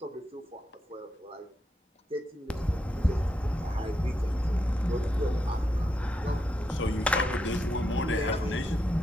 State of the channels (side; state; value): both; normal; correlation 0.83